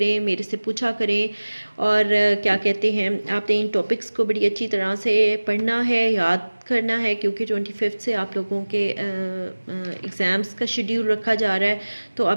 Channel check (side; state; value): both; inverted; correlation -1.00